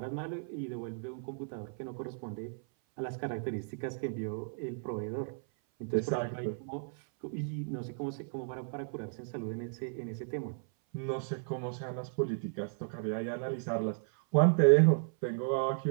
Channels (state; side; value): silent; left; 55 dB below the other